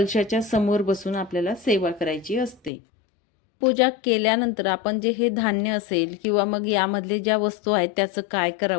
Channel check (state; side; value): drops out; right; at 2.7 s